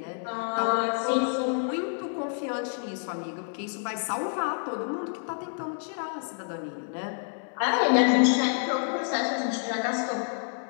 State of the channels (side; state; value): right; silent; 59 dB below the other